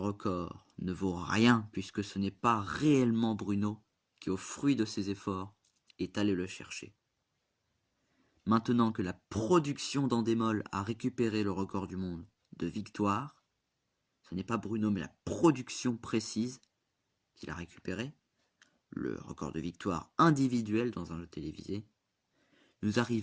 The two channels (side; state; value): both; identical; correlation 1.00